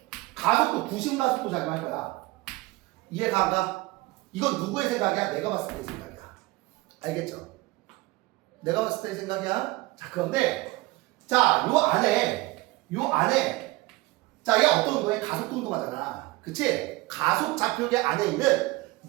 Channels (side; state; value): left; quieter; 20.9 dB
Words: 가속도, 구심 가속도 작용할 거야. 이해가 안 가? 이건 누구의 생각이야? 내가 봤을 때의 생각이야. 알겠죠? 내가 봤을 때의 생각이야. 자, 그런데, 자, 요 안에, 자, 얘 어떤 운동해? 가속도 운동하잖아. 그치? 가속 좌표계 안에 있는